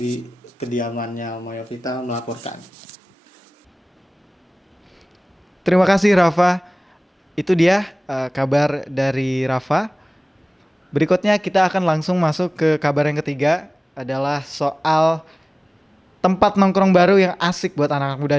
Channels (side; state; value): both; normal; correlation 0.98